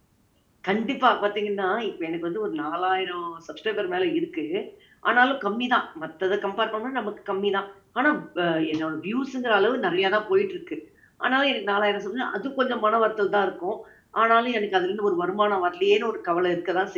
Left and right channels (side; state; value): both; identical; correlation 1.00